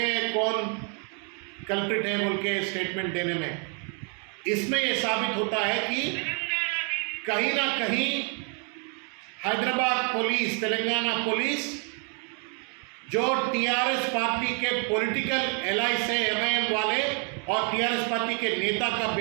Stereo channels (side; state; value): left; quieter; 38.5 dB